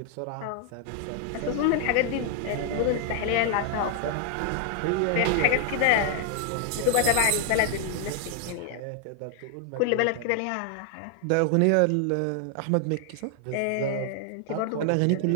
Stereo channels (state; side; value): different; both; correlation 0.00